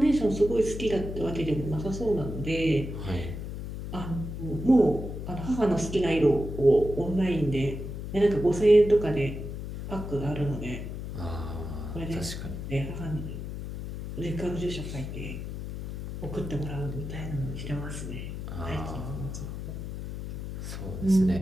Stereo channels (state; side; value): noise; left; hum, 7 dB below the sound